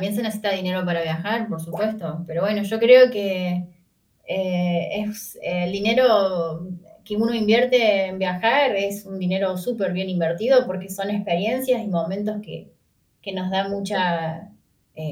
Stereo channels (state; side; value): identical; both; correlation 1.00